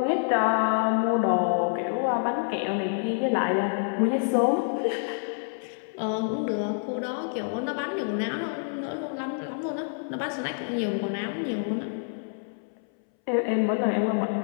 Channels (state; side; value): silent; right; 60 dB below the other